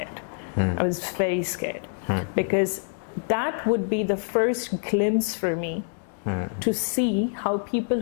I was very scared because that would be the first glimpse for me to see how people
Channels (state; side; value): silent; right; digital silence